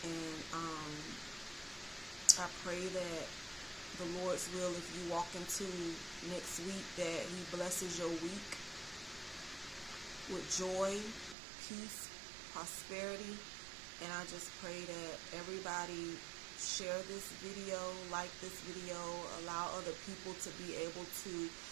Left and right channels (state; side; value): drops out; left; at 11.4 s